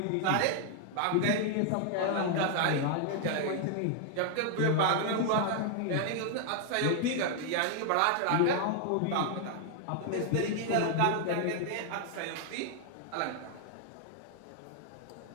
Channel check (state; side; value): different; both; correlation 0.00